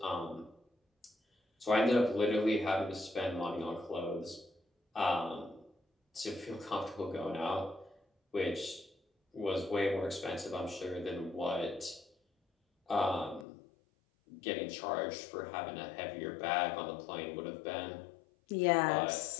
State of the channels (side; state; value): right; drops out; at 13.5 s